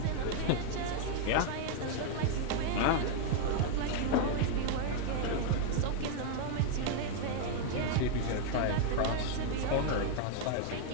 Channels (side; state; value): both; different; correlation 0.00